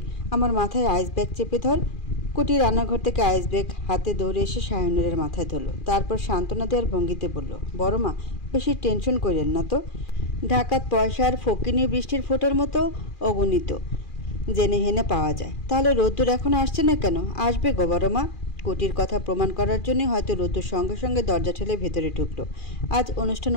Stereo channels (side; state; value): right; late; 2.4 ms